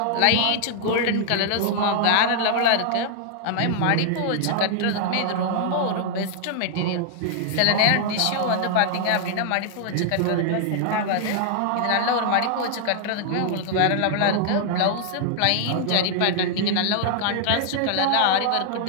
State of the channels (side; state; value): both; different; correlation -0.01